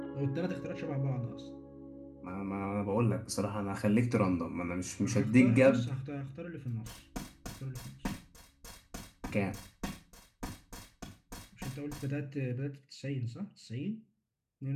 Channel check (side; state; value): both; identical; correlation 1.00